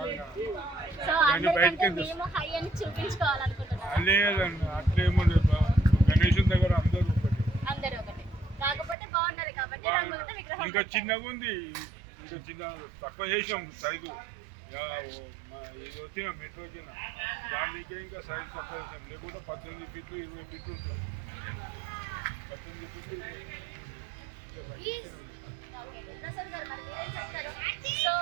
సో అందరికంటే మేము హై అని చూపించుకోవాలనుకుంటున్నాం. లేదండి, అట్లేమో గణేశుని దగ్గర అందరూ ఒకటి. కాకపోతే బాగున్నది కాబట్టి రంగులతో విగ్రహం ఇంకా చిన్నగా ఉంది, ఇంకా చిన్న తక్కువ చేసాం సైజు. ఇది వచ్చిన మెట్రో వచ్చిన దానికి ఇంకా సైజు తక్కువ చేసాం. లేకుంటే 18 ఫీట్లు 20 ఫీట్లు ఉంటుంది. 18 ఫీట్లు ప్రసాద్ గారు మరి మీరేం చెప్తారు? సో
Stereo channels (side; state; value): left; drops out; at 9.0 s